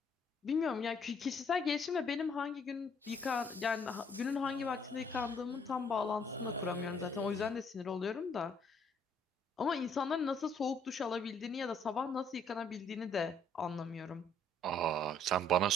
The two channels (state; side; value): normal; both; correlation 0.65